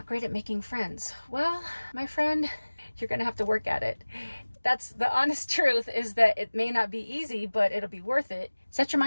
great at making friends? Well, my friend, you're gonna have to work at it. That's the honest truth, is that it may not be easy, but it'll be worth it. Set your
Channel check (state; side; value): inverted; both; correlation -1.00